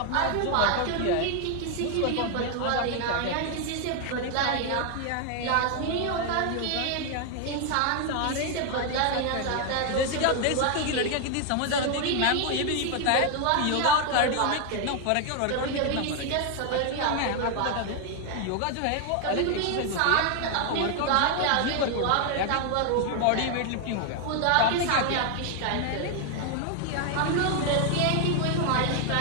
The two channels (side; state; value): both; different; correlation 0.00